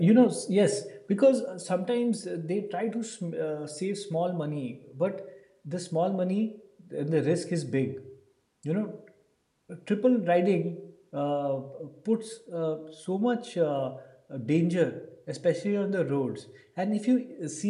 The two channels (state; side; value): identical; both; correlation 1.00